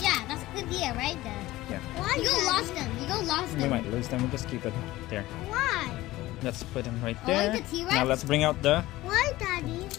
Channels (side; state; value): right; quieter; 17.4 dB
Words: Yeah, that's a good idea, right? Yeah. Why? You go lost them. You go lost We them. might lose them. We'll just keep it there. Why? Let's put them right I like there. the T-Rex. Now let's bring out the. Why, Daddy?